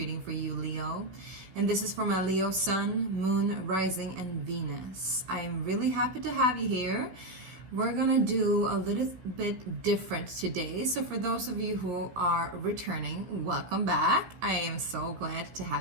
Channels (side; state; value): left; late; 16 ms